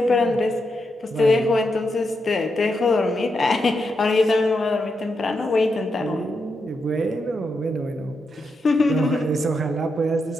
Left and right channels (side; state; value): both; normal; correlation 0.84